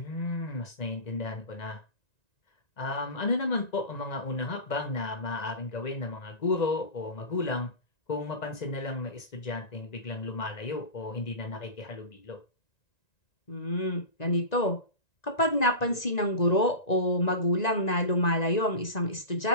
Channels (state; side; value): late; right; 1.9 ms